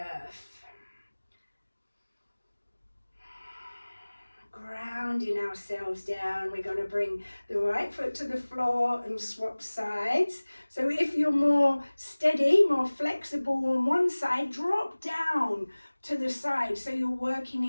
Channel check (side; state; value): both; inverted; correlation -1.00